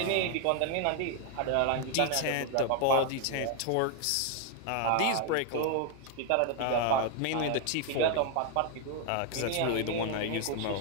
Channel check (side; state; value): both; different; correlation 0.01